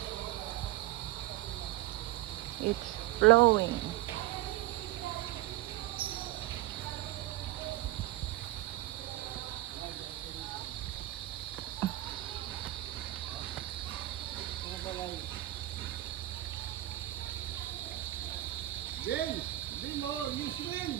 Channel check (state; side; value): quieter; left; 16.3 dB